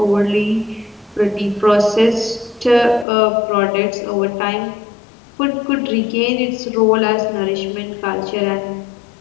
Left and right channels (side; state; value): right; drops out; at 3.1 s